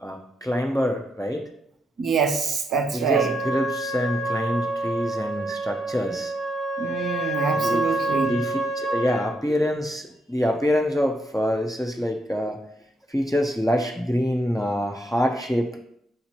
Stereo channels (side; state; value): both; normal; correlation 0.79